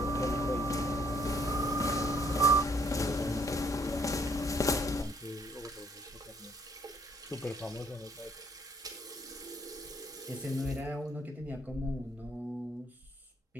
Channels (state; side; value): normal; both; correlation 0.65